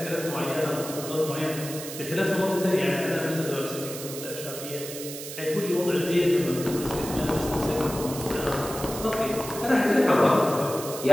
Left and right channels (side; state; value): right; noise; hiss, 10 dB below the sound